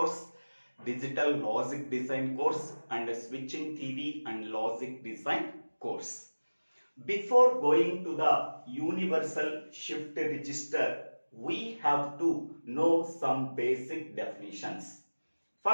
digital logic design course and switching theory and logic design course. Before going to the universal shift register, we have to know some basic definitions.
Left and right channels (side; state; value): both; inverted; correlation -1.00